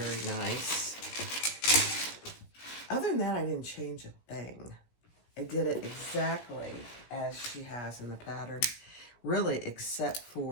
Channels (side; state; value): right; late; 17 ms